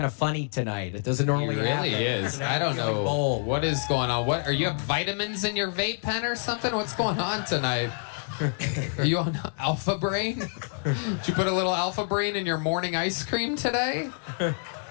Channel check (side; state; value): right; silent; digital silence